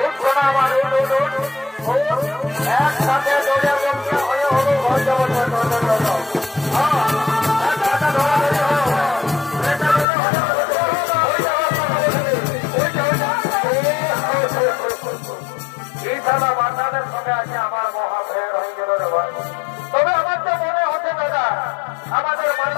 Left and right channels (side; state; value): right; drops out; at 10.1 s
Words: উঠ শোনা আমার, উঠ উঠ উঠ উঠ, একসাথে দৌড়ে বলছে হয়ে হলো ঘর যাবো। এই সালা বাচ্চাদের সঙ্গে আছে আমার মহা ভেড় হয়ে গেল রে ভাই। তবে আমার তো মনে হচ্ছে দাদা আমাদের